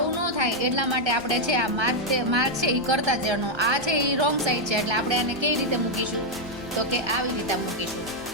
ન થાય એટલા માટે આપણે છે આ માર્ક છે એ કરતા જવાનું. આ છે એ રોંગ સાઈડ છે, એટલે આપણે આને કઈ રીતે મૂકીશું તો કે આવી રીતે મૂકીશું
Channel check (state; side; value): normal; both; correlation 0.00